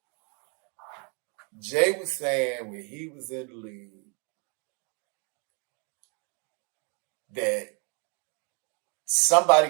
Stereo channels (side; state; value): left; quieter; 36.5 dB